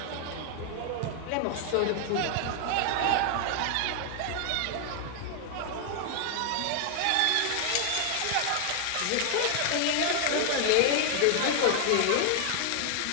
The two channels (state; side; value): different; both; correlation 0.00